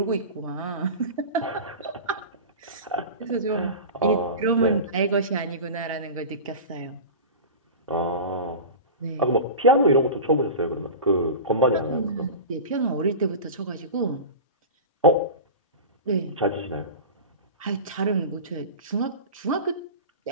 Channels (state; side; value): inverted; both; correlation -0.30